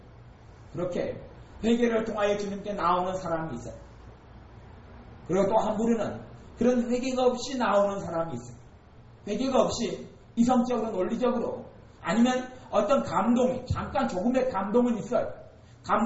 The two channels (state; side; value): identical; both; correlation 1.00